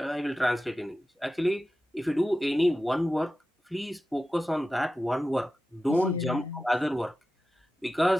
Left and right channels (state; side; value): normal; both; correlation 0.93